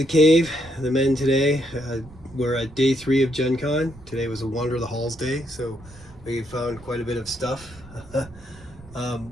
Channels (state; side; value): noise; right; rumble, 21 dB below the sound